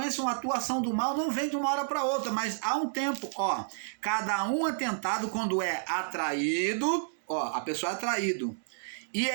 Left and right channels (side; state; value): left; silent; digital silence